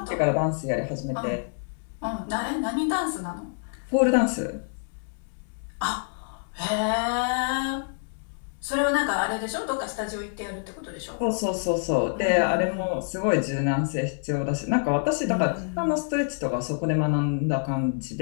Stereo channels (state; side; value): silent; right; digital silence